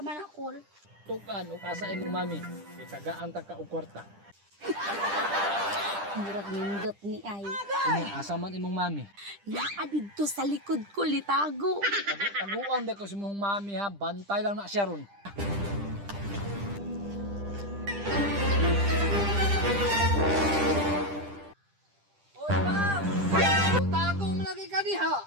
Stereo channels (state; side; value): late; left; 10 ms